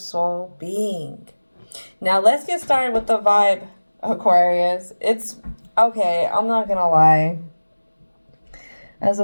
being. Now, let's get started with the vibe, Aquarius. It's okay, I'm not gonna lie. As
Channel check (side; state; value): both; inverted; correlation -1.00